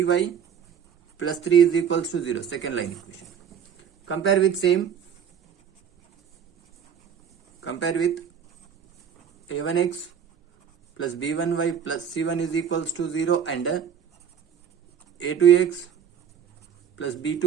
plus 3 is equals to 0, second line equation. Compare with a1x plus b1y plus c1 is equals to 0 and a2x plus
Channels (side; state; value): left; quieter; 7.9 dB